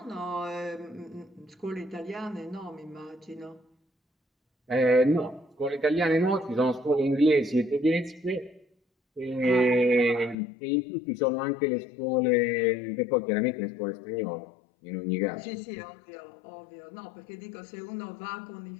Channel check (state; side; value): drops out; right; at 10.4 s